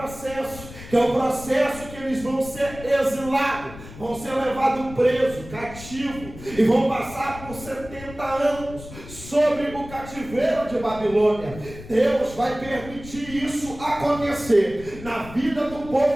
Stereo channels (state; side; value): noise; left; rumble, 15 dB below the sound